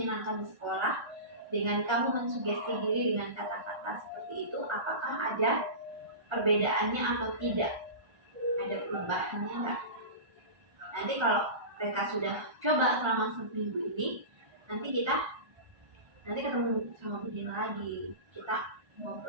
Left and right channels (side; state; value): left; late; 1.3 ms